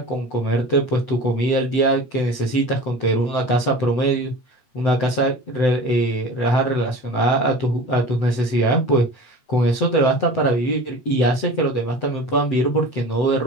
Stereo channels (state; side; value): late; right; 7.9 ms